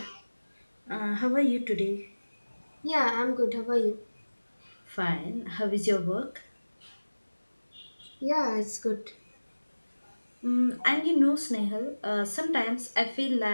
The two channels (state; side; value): inverted; both; correlation -1.00